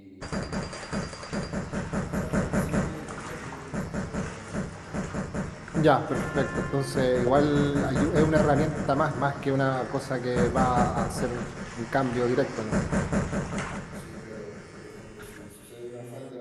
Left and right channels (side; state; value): both; identical; correlation 1.00